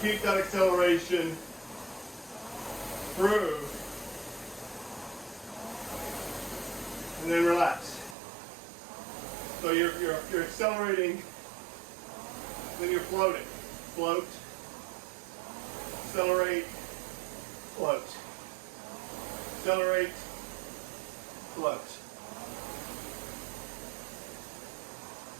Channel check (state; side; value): drops out; left; at 8.2 s